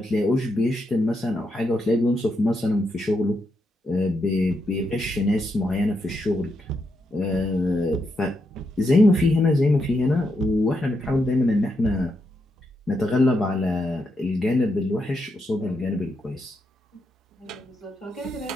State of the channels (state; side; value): normal; both; correlation 0.82